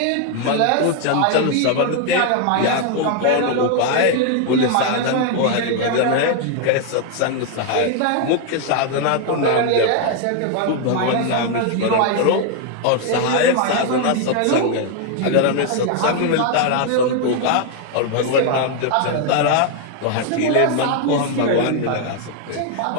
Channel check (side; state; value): both; different; correlation 0.00